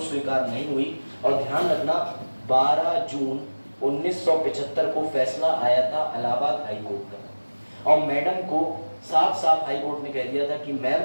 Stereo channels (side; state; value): both; inverted; correlation -1.00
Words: स्वीकार नहीं हुई। और ध्यान रखना, 12 जून 1975 को फैसला आया था इलाहाबाद हाई कोर्ट का, और मैडम को साफ साफ हाई कोर्ट ने कह दिया था कि